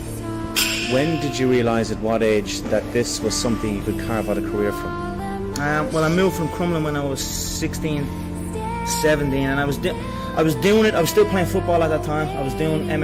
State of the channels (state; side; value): identical; both; correlation 1.00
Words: When did you realise, at what age, that this was something you could carve out a career from? Well, I moved from Crumlin when I was 16, 17, and I was doing it. I was still playing football at that time. I was doing